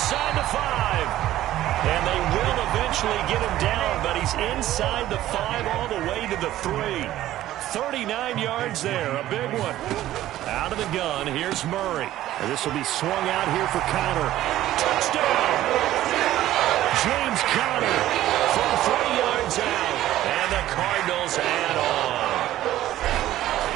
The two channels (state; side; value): quieter; left; 14.0 dB